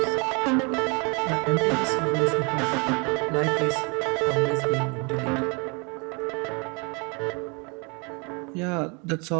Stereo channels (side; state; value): left; quieter; 31.8 dB